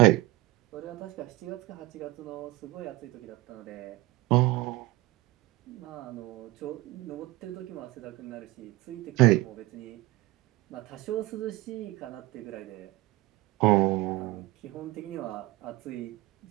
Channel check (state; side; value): quieter; left; 19.2 dB